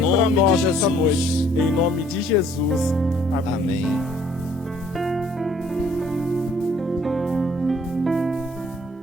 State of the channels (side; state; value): both; normal; correlation 0.61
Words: para nós nessa noite. Em nome de Jesus. Amém. Amém.